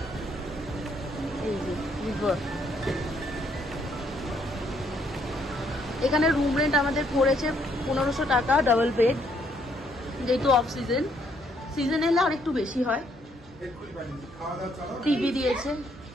এই যে রিভার। এখানে রুম রেন্ট আমাদের পড়েছে 1500 টাকা, ডাবল বেড, যেহেতু অফ সিজন। সিজন এলে আর একটু বেশি হয়। টিভি দিয়েছে।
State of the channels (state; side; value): normal; both; correlation 0.70